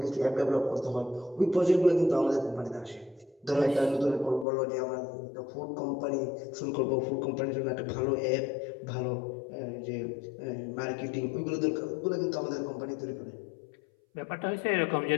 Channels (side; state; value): right; drops out; at 4.5 s